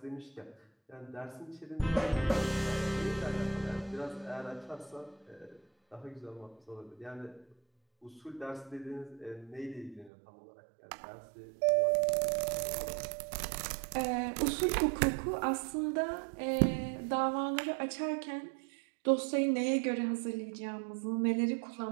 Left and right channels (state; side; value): drops out; left; at 10.1 s